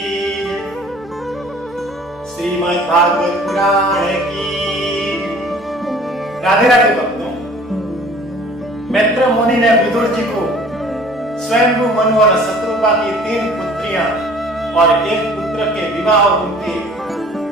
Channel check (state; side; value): normal; both; correlation 0.50